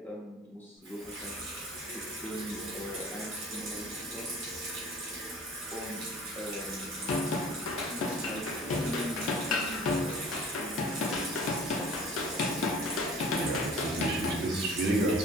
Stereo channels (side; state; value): both; normal; correlation 0.46